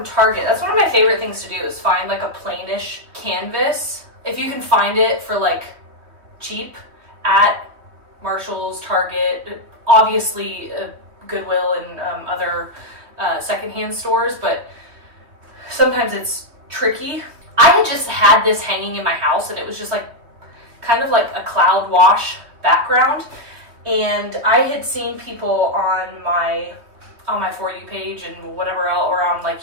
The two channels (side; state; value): left; late; 3.2 ms